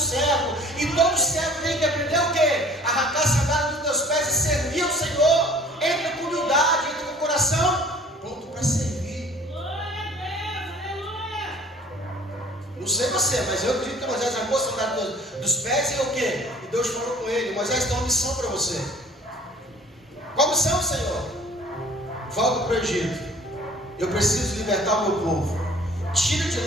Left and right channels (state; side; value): normal; both; correlation 0.50